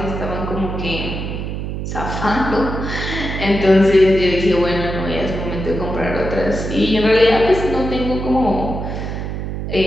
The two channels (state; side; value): noise; right; hum, 5 dB below the sound